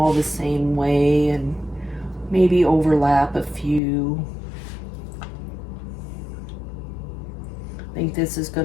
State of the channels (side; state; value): right; drops out; at 3.8 s